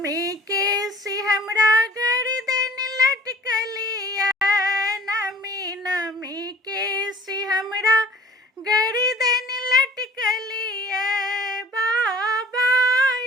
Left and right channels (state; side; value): normal; both; correlation 0.49